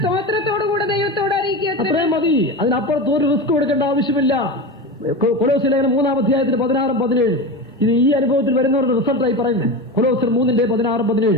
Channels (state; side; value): normal; both; correlation 0.24